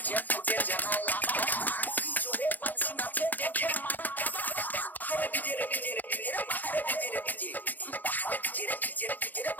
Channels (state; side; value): late; right; 0.084 ms